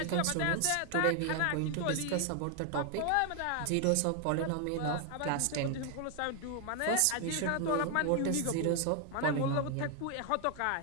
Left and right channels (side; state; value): both; different; correlation 0.00